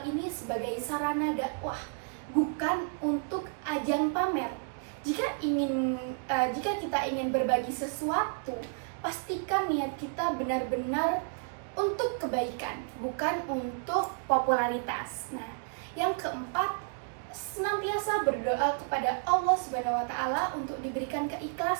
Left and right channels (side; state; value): left; silent; 57 dB below the other